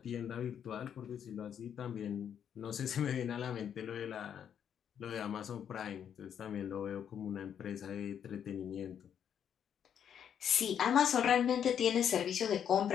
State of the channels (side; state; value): right; quieter; 8.7 dB